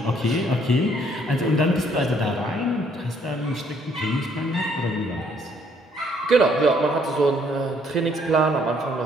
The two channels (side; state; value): both; normal; correlation 0.66